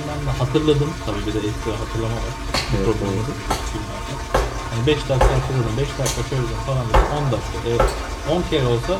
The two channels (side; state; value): both; identical; correlation 1.00